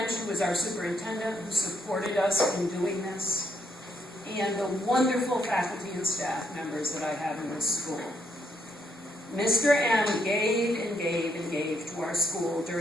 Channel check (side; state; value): both; normal; correlation 0.75